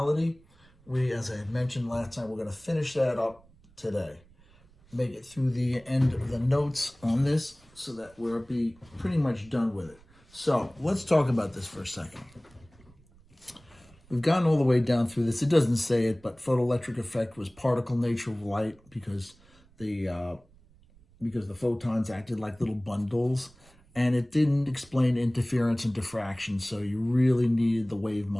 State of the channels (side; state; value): right; noise; rumble, 28 dB below the sound